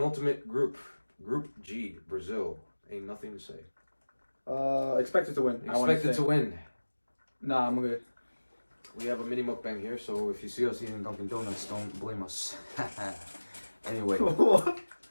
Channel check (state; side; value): inverted; both; correlation -1.00